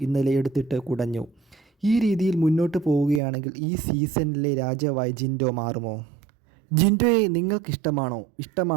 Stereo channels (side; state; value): left; drops out; at 3.2 s